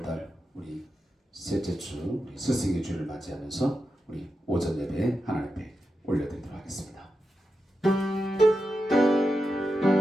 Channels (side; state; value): both; normal; correlation 0.89